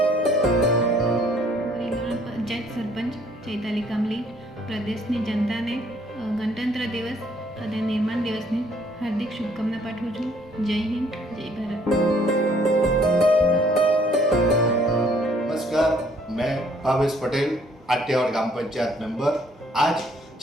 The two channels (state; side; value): normal; both; correlation 0.63